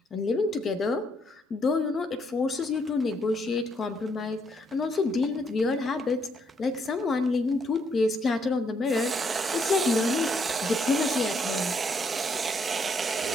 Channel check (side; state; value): both; normal; correlation 0.73